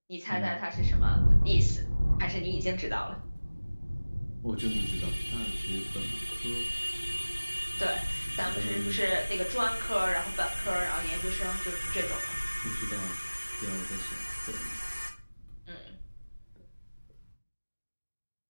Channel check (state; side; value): inverted; both; correlation -1.00